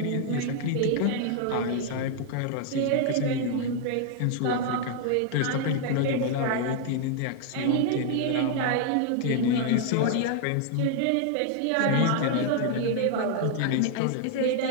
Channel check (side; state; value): both; different; correlation 0.00